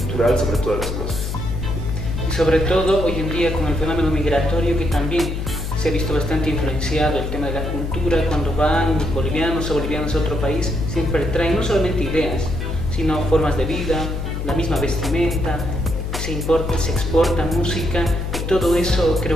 sobre todas las cosas. Y sobre todo hoy en día con el fenómeno migratorio, que también se ha visto bastante influenciado el tema de la cultura. Cuando van bolivianos a otro país, siempre traen no solamente ideas, sino formas de vida, la misma vestimenta, se exporta música, y todo eso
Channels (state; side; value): noise; left; hum, 4 dB below the sound